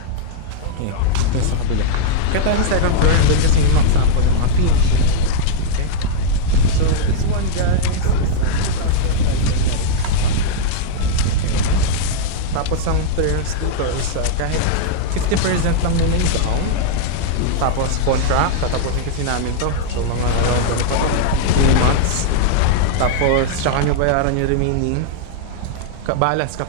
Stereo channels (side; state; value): both; different; correlation -0.02